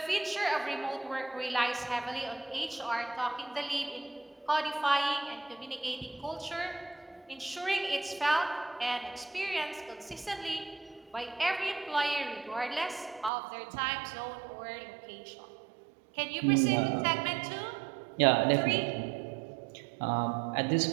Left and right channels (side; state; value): left; drops out; at 13.3 s